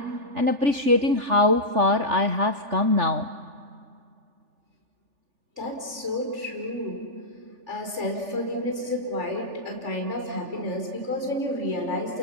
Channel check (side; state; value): left; late; 3.4 ms